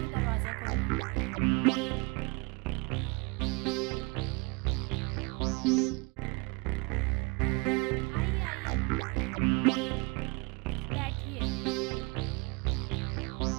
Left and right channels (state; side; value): quieter; left; 27.2 dB